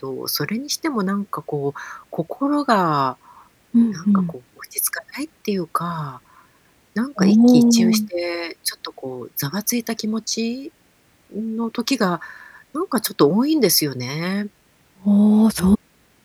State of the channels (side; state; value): both; identical; correlation 1.00